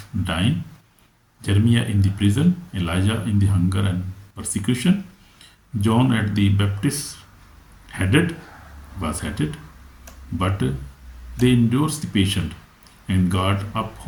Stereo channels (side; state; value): both; identical; correlation 1.00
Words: dying, Jeremiah in the prison, Elijah in the hunger and persecution, John at the Baptist was headed, but they endured the patient, and God